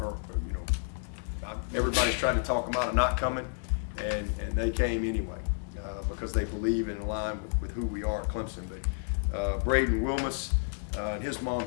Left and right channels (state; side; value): silent; right; digital silence